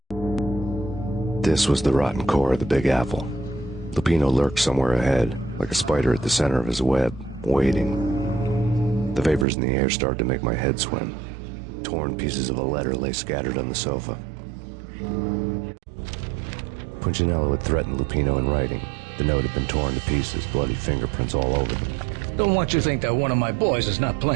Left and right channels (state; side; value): drops out; left; at 9.5 s